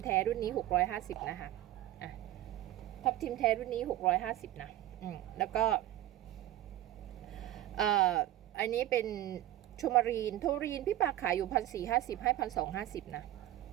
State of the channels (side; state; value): left; quieter; 14.1 dB